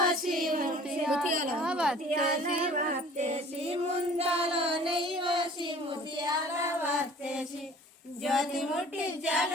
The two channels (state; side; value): normal; both; correlation 0.49